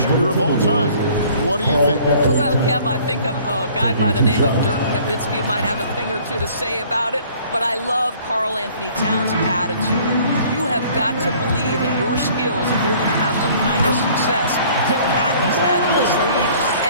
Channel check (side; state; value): both; inverted; correlation -0.54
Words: shooter of all time. What do you think? Well, Kev, I think a guy by the name of Dirk Nowitzki might have a thing or two to say about it, but I love Karl Anthony Towns' attitude. You have got to believe in your skills if you're going to have the kind of success that Pat has had in this league,